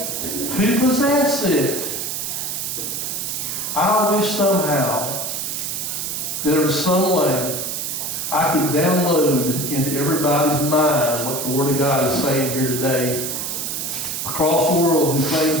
possess it. I wish somehow there was some way I could download into everybody's mind what the Word of God is saying here today across the world who claims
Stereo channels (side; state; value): right; noise; hiss, 3 dB below the sound